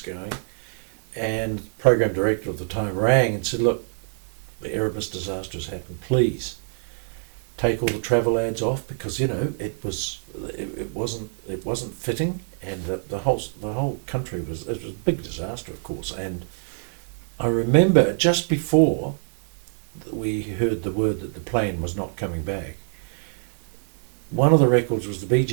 And the program director at the time rang and said, "Look, the Erebus disaster has happened. Please take all the travel ads off, because it wasn't fitting, and the whole country was a big disaster, of course." And I remember just before we heard the word that the plane was not coming back, one of the records was the Bee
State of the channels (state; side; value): silent; left; 62 dB below the other